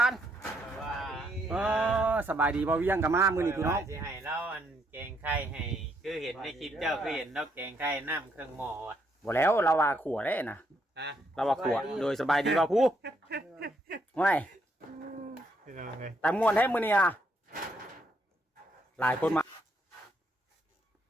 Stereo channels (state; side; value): normal; both; correlation 0.74